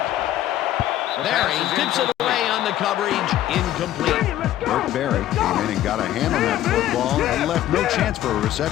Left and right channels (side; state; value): right; quieter; 13.0 dB